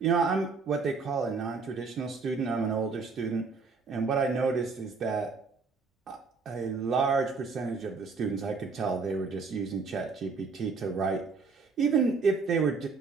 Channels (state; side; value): quieter; left; 4.6 dB